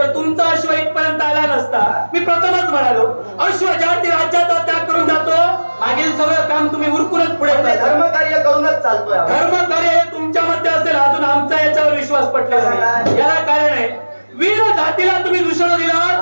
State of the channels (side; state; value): both; inverted; correlation -1.00